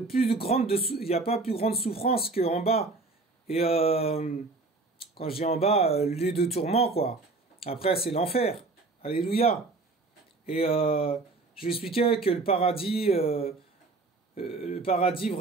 y a pas plus grande souffrance qu'en bas. Et quand je dis en bas, lieu de tourment, quoi. Après, c'est l'enfer. Alléluia. Et je lui expliquais que le paradis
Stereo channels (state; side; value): quieter; left; 3.6 dB